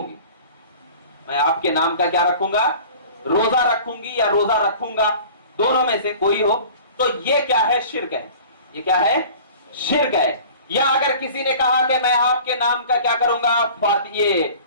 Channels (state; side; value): inverted; both; correlation -0.43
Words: گی، میں آپ کے نام کا کیا رکھوں گا؟ روزہ رکھوں گی یا روزہ رکھوں گا، دونوں میں سے کوئی ہو، تو یہ کیا ہے؟ شرک ہے۔ یہ کیا ہے؟ شرک ہے۔ یا اگر کسی نے کہا کہ میں آپ کے نام کا کیا کروں گا؟ یہ